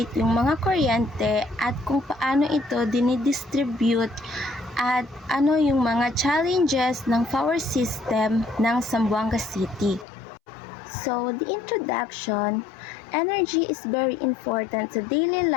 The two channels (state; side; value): drops out; right; at 10.1 s